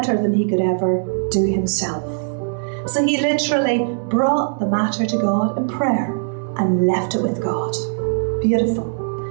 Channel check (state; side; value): silent; left; digital silence